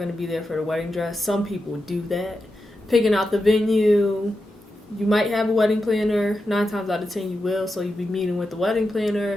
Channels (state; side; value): normal; both; correlation 0.89